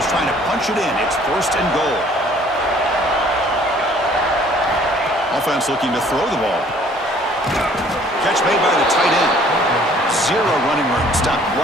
trying to punch it in. It's 1st and goal. Offense looking to throw the ball. Catch made by the tight end. 0 running room. Stopped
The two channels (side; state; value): both; normal; correlation 0.57